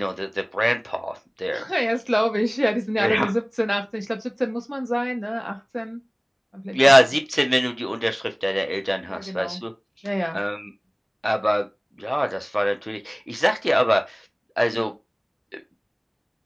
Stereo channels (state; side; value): identical; both; correlation 1.00